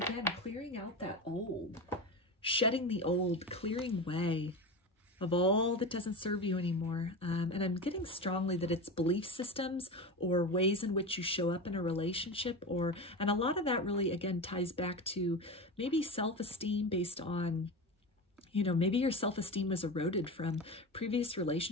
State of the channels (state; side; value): normal; both; correlation 0.24